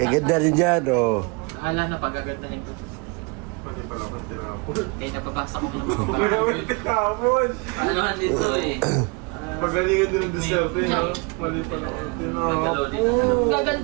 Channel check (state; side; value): quieter; left; 30.9 dB